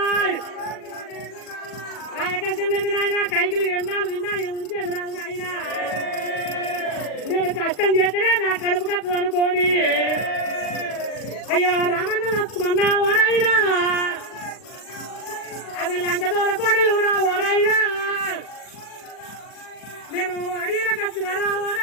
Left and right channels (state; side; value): late; right; 40 ms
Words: ఆ కష్టం లేదు నాయన కైకిలు ఎన్నాళ్ళు తిన్నా ఉంచేది రాదు నాయన నేను కష్టం చేస్తేనే నా కడుపు కట్టదు అనుకోని అయ్యో రామన్న లక్ష్మణ ఓనైనా అది లంక దూర కోడలు రావోనైనా నేను అడవిలో కచ్చిన